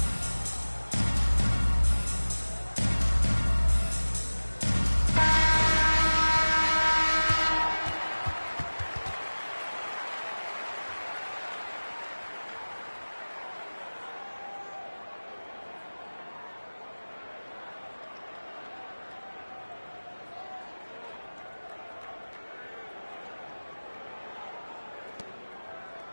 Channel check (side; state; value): both; inverted; correlation -1.00